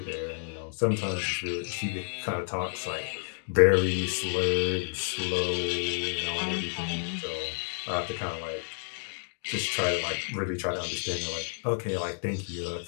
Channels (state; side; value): silent; right; digital silence